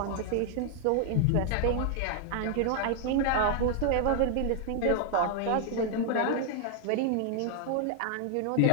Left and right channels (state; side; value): different; both; correlation 0.00